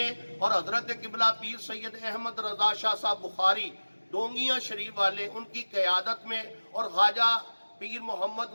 اور حضرت قبلہ پیر سید احمد رضا شاہ صاحب بخاری ڈونگیاں شریف والے ان کی قیادت میں، اور خواجہ پیر محمد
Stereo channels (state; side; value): inverted; both; correlation -1.00